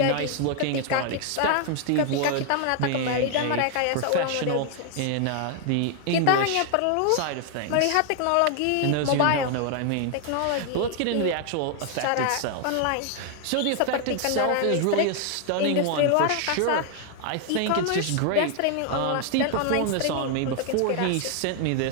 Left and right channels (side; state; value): both; different; correlation 0.00